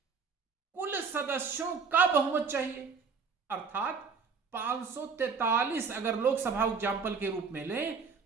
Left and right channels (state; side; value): quieter; left; 5.3 dB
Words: कुल सदस्यों का बहुमत चाहिए, अर्थात 543 अगर लोकसभा एग्जाम्पल के रूप में लें